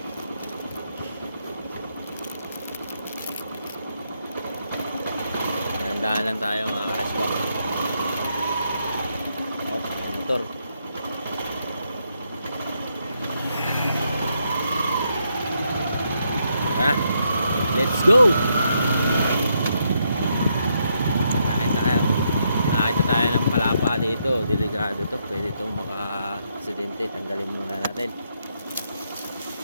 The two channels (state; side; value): inverted; both; correlation -0.78